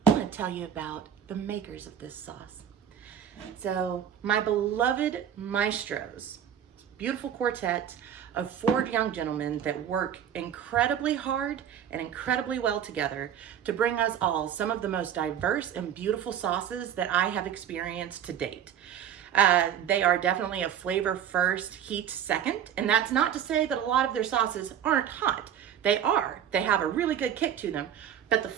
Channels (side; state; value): left; quieter; 9.2 dB